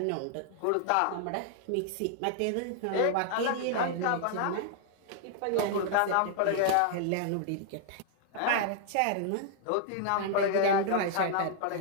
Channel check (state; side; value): different; both; correlation -0.01